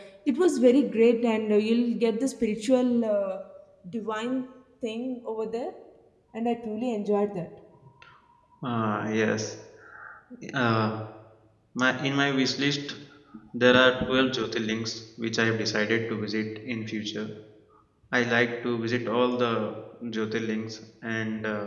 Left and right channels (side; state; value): both; identical; correlation 1.00